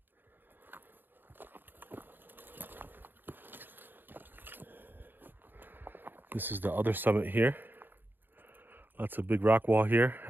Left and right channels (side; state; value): left; late; 0.094 ms